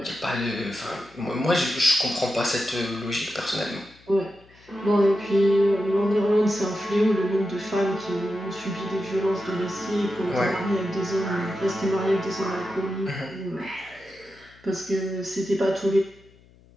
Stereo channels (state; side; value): noise; left; hum, 27 dB below the sound